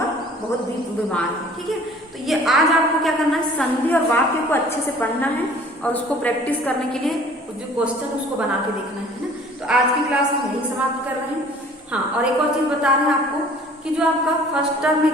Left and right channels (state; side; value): normal; both; correlation 0.51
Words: बहुत बीमार है, ठीक है। तो ये आज आपको क्या करना है, संधि और वाक्य को अच्छे से पढ़ना है और उसको प्रैक्टिस करने के लिए जो क्वेश्चन उसको बना के देखना है ना। तो आज की क्लास हम यही समाप्त कर रहे हैं। हाँ, और एक और चीज बता रहे हैं आपको कि जो आपका फर्स्ट टर्म